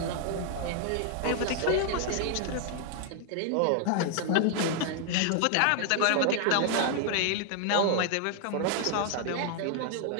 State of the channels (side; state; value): both; different; correlation 0.00